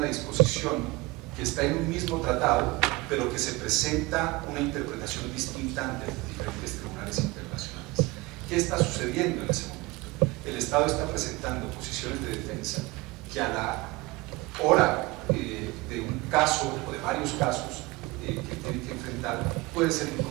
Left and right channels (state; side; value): quieter; left; 22.0 dB